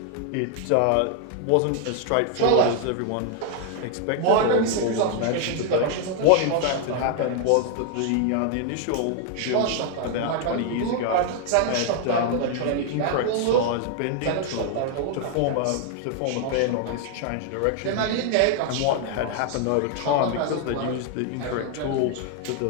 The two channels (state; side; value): different; both; correlation 0.00